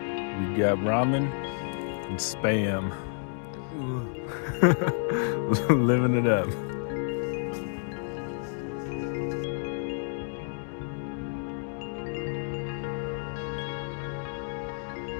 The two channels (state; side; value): silent; right; 58 dB below the other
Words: got ramen and spam. Living it up.